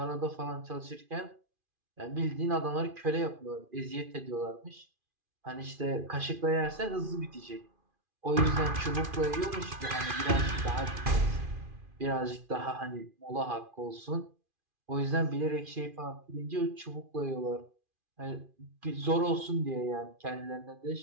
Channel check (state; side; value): late; left; 2.4 ms